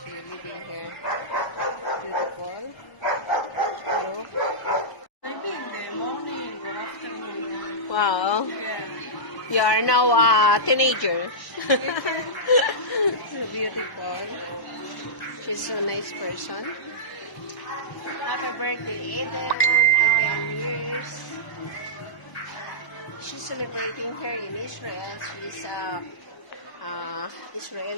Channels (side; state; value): right; late; 1.0 ms